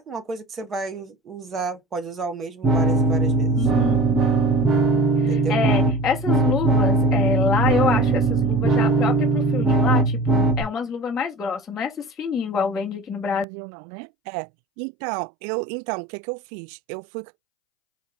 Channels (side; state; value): left; drops out; at 13.5 s